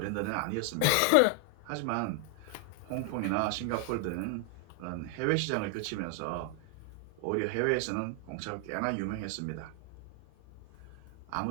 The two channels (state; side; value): different; both; correlation 0.00